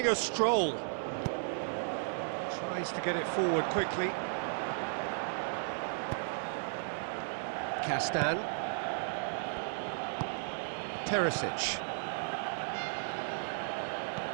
a stroll. Tries to get it forward quickly. Castan. Perisic.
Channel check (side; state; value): left; silent; 55 dB below the other